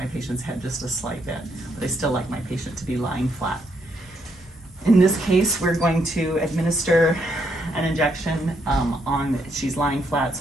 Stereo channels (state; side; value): normal; both; correlation 0.76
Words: patient's head just a slight bit, but I still like my patient to be lying flat. In this case, we're going to administer an injection she's lying flat,